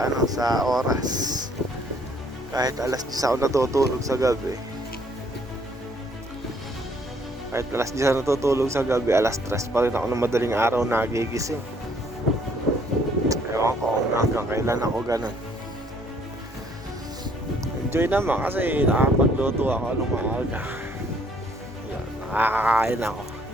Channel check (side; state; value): both; normal; correlation 0.64